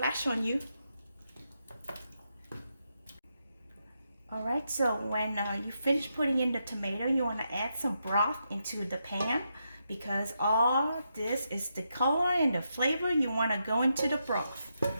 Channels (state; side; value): inverted; both; correlation -0.83